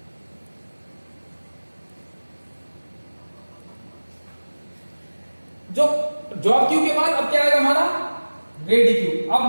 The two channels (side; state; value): both; inverted; correlation -1.00